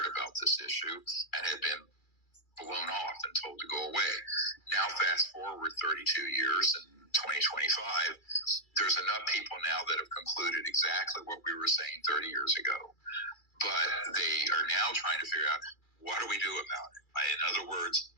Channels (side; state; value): right; late; 2.3 ms